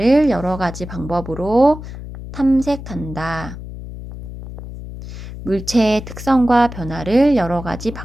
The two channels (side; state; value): left; noise; hum, 11 dB below the sound